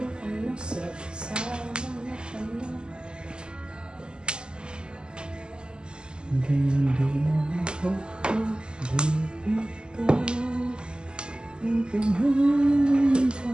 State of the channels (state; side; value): late; left; 0.048 ms